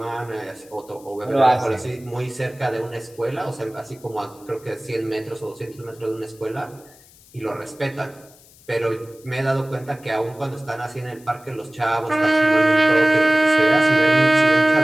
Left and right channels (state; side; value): noise; left; hiss, 26 dB below the sound